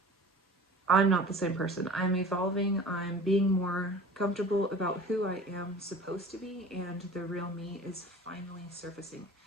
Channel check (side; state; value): both; normal; correlation 0.41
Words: the same person. I'm evolving. I'm being more comfortable about who I am supposed to be, and the real me is finally surfacing.